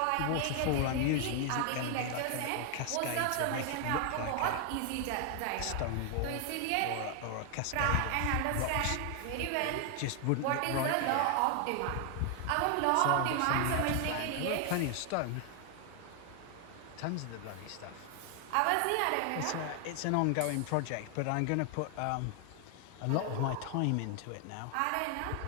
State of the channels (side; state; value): both; different; correlation 0.00